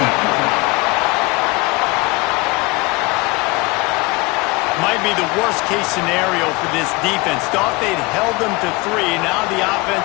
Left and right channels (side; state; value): right; quieter; 24.5 dB